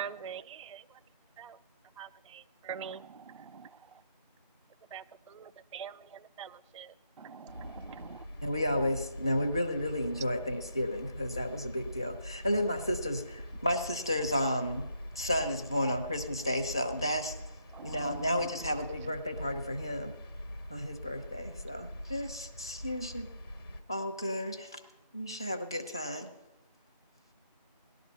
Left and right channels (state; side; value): inverted; both; correlation -0.76